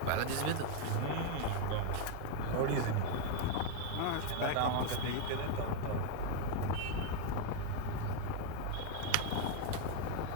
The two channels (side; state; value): both; different; correlation 0.00